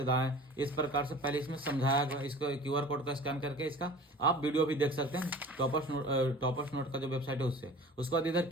दाएं, इस प्रकार से पहले इसमें समझाया गया। इसको क्यूआर कोड का स्कैन करके इसका आप वीडियो भी देख सकते हैं टॉपर्स नोट का जो वेबसाइट है उससे। उसके बाद इधर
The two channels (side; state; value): both; normal; correlation 0.42